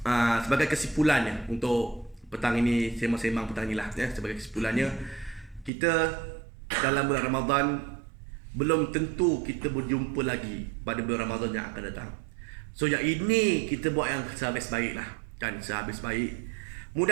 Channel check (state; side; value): drops out; left; at 5.7 s